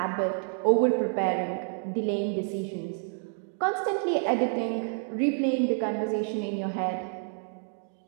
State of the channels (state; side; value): silent; left; 55 dB below the other